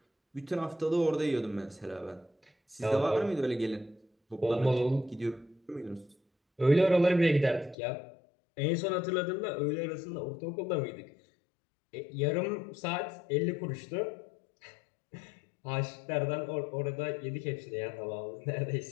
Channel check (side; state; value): right; drops out; at 7.8 s